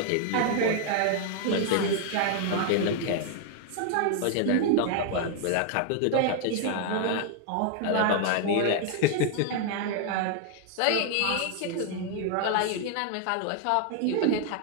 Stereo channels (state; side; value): different; both; correlation 0.00